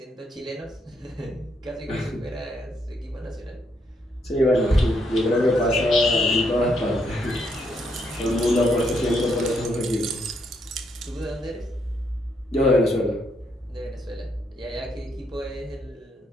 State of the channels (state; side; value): normal; both; correlation 0.75